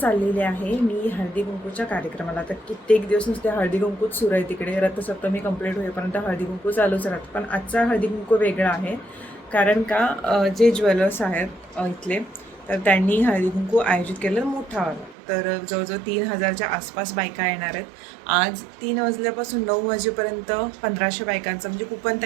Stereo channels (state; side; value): drops out; left; at 15.2 s